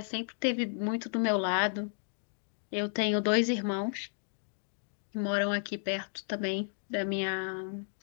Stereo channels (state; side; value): silent; right; digital silence